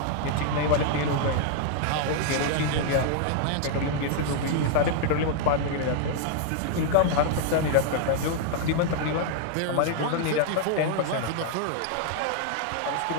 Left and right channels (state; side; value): different; both; correlation -0.01